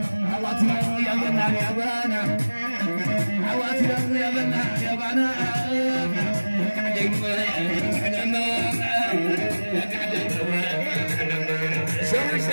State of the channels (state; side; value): inverted; both; correlation -1.00